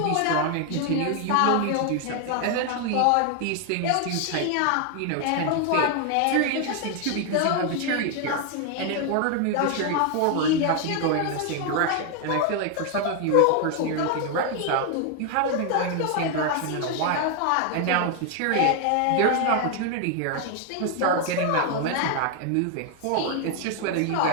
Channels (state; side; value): different; both; correlation 0.00